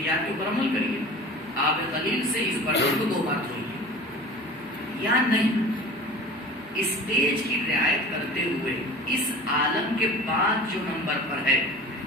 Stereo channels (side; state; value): both; normal; correlation 0.39